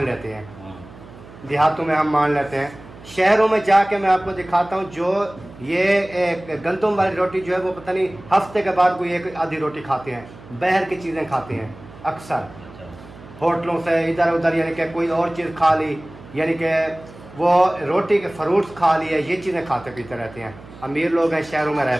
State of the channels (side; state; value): right; noise; hum, 19 dB below the sound